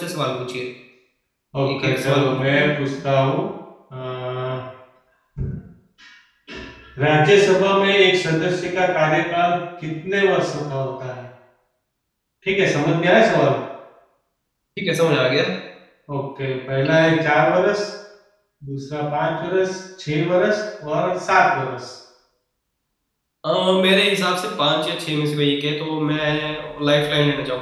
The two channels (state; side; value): identical; both; correlation 1.00